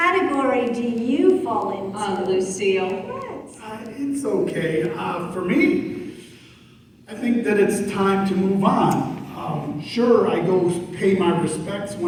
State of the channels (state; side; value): identical; both; correlation 1.00